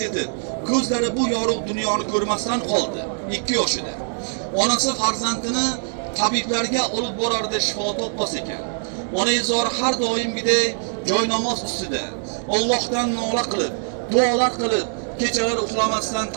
yetib, ko'zlari bu yorug' dunyoni ko'rmasdan qoldi. 2 yoshida. Onasi farzandini tabiblarga olib borardi, shifo topmas ekan. Onazor har doimgidek joynamoz ustida Allohdan nola qilib, duolar qilib, kechalar uxlamasdan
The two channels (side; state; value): left; silent; digital silence